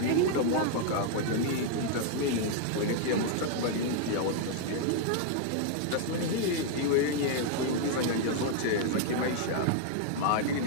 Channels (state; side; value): different; both; correlation 0.00